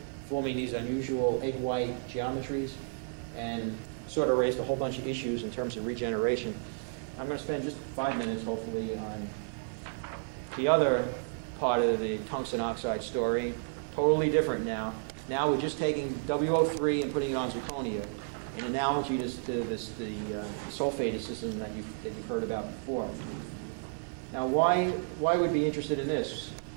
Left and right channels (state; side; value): silent; left; digital silence